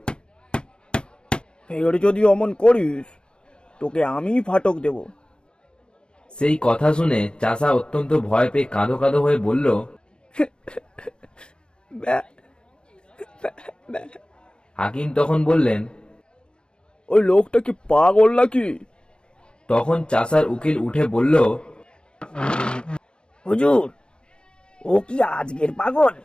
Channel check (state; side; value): late; right; 0.051 ms